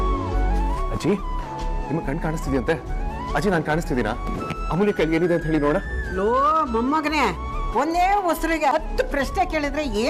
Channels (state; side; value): identical; both; correlation 1.00